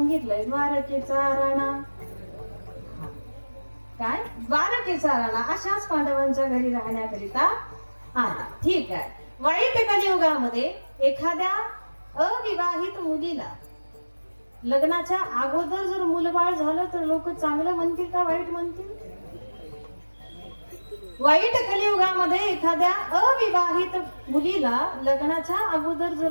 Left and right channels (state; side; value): inverted; both; correlation -1.00